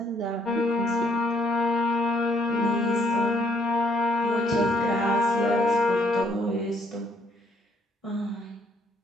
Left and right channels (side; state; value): both; normal; correlation 0.68